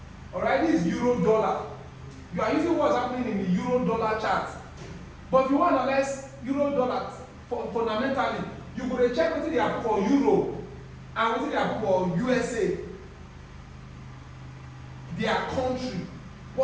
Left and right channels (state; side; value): identical; both; correlation 1.00